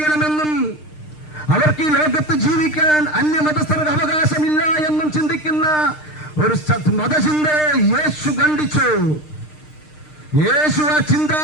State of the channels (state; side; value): late; right; 6.6 ms